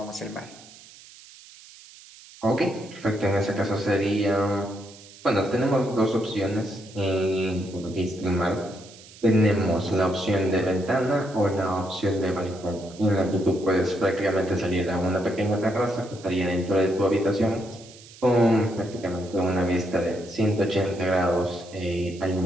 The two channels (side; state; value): right; noise; hiss, 21 dB below the sound